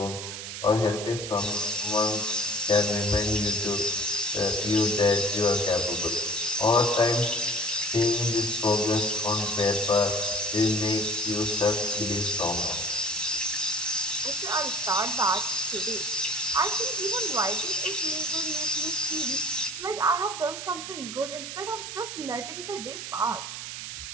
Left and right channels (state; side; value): noise; right; hiss, 8 dB below the sound